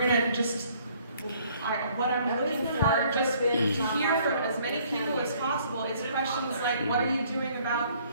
just, what I'm looking for, just to hear from as many people as possible, is questions like, what are you doing about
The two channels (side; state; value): both; inverted; correlation -0.61